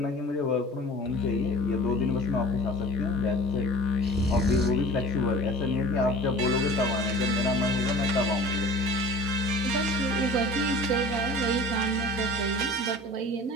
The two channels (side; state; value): both; normal; correlation 0.42